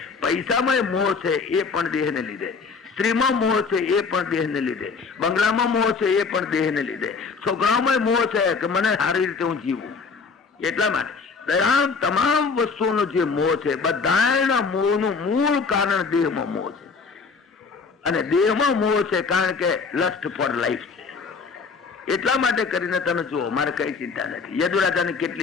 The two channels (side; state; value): right; quieter; 4.9 dB